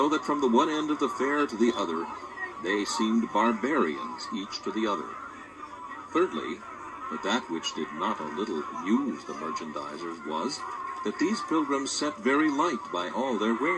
that from the one end of the fair to the other, they seemed barbarians each to the other. Thirdly, But that which did not a little amuse the merchandisers was that these pilgrims set very light by all their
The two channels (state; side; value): identical; both; correlation 1.00